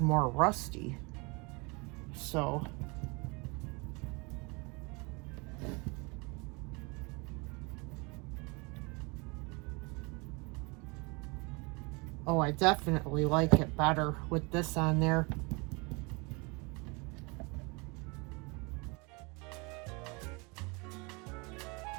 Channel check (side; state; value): left; quieter; 28.9 dB